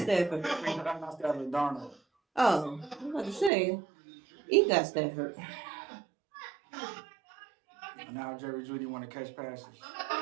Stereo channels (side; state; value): left; drops out; at 3.5 s